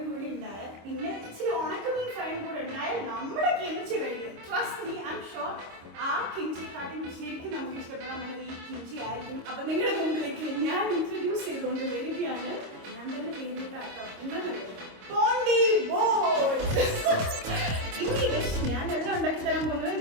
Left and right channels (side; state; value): left; late; 26 ms